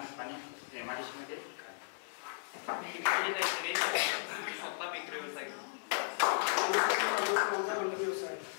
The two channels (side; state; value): right; silent; 54 dB below the other